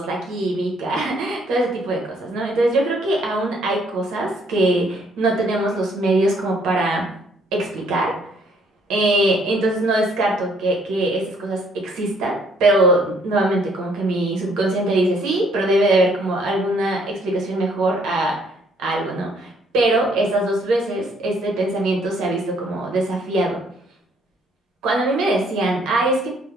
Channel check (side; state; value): both; normal; correlation 0.65